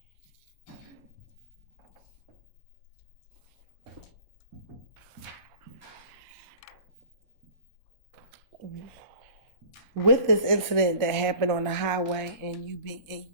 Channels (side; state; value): both; inverted; correlation -0.43